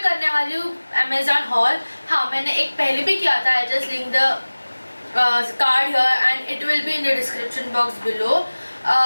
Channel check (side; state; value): both; inverted; correlation -1.00